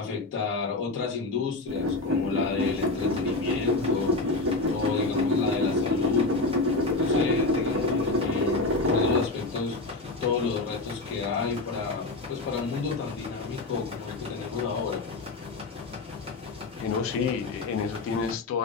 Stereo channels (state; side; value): quieter; right; 3.2 dB